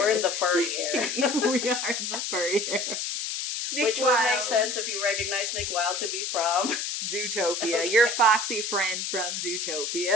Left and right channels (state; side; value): noise; left; hiss, 3 dB below the sound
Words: in the furry era. We are in the furry era. Which would make sense if you recognize Nick Wild to be from Zootopia. Your foxy friend from